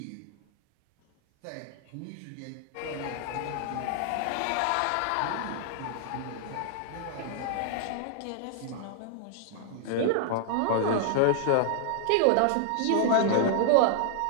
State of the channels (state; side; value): different; both; correlation -0.01